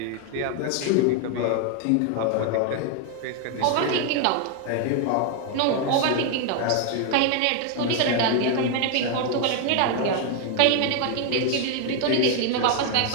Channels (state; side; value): different; both; correlation 0.01